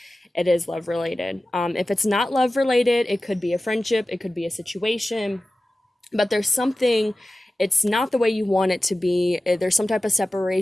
it is love related. If it's not love related, it could be a friendship, it could be a situation, but there's something, it's not the way you want it to be. There's some type of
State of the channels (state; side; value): normal; both; correlation 0.95